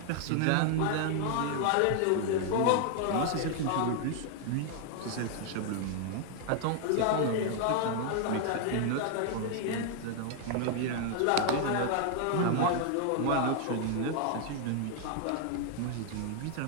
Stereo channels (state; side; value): different; both; correlation 0.00